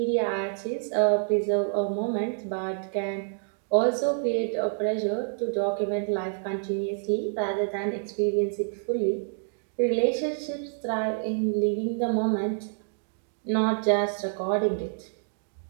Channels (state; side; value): silent; left; digital silence